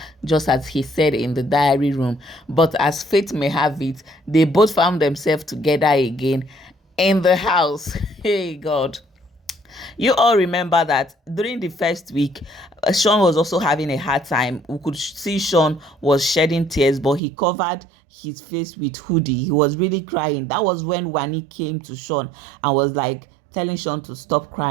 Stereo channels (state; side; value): drops out; left; at 17.2 s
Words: just as he said in the diary room. But as fate may have it, they both found themselves together again in the house. Hey God. You all remember that during the first week, Shaun was also having a hard time. We could see Shaun was shedding tears, but he covered his face with hoodie. He was really crying. That was when Wani came to Shaun and was like telling Shaun to stop